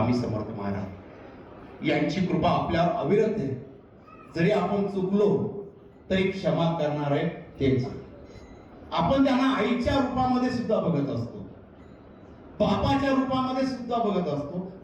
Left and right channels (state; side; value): identical; both; correlation 1.00